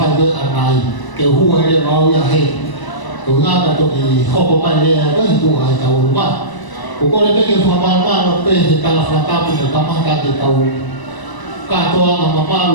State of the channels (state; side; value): late; right; 1.0 ms